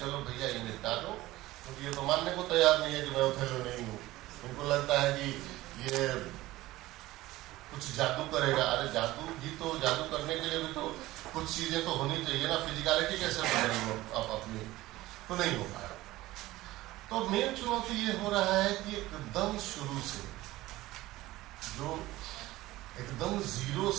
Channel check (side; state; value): left; quieter; 17.5 dB